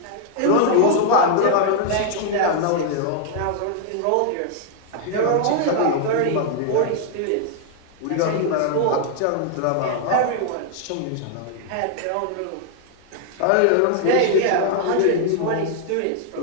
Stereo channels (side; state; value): both; different; correlation 0.00